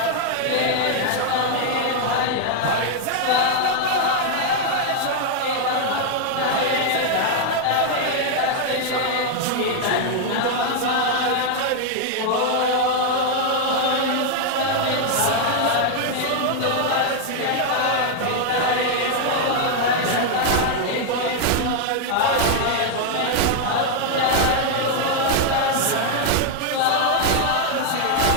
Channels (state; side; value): different; both; correlation 0.00